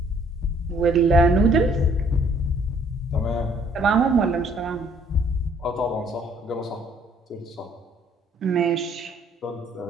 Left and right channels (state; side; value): normal; both; correlation 0.61